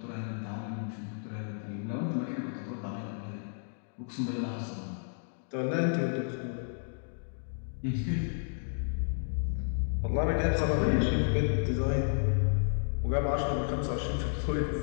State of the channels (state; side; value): silent; right; digital silence